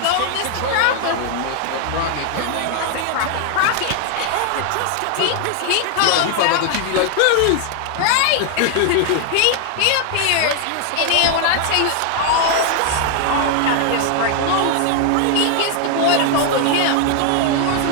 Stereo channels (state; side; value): different; both; correlation 0.00